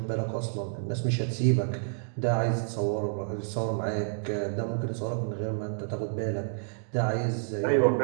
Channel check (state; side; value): silent; left; digital silence